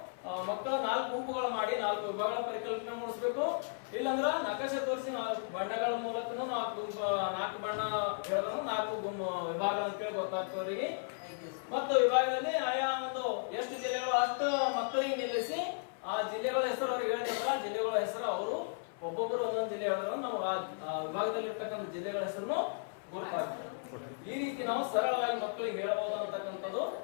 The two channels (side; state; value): right; silent; 54 dB below the other